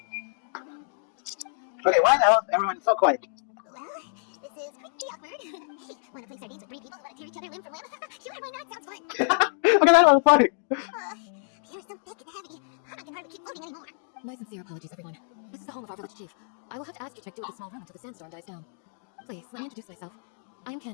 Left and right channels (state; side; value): silent; right; digital silence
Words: Okay, why the hell is everyone so quiet? Well, this is pretty awkward. Hey, wanna play sardines with 3 people who wanna tear each other limb from limb? Sure, why not? Sounds fun. Okay, that was funny. You're so thick and heavy. I can hardly keep floating anymore. My sincere apologies, everyone. This is the home of our village chief. I will have to ask you to make do with a small room until the sandstorm dies down. Please, let me introduce myself. I am